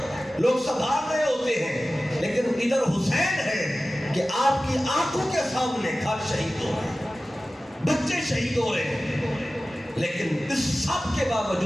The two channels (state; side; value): normal; both; correlation 0.96